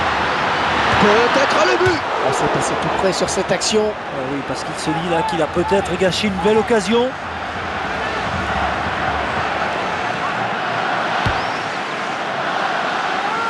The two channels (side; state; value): both; identical; correlation 1.00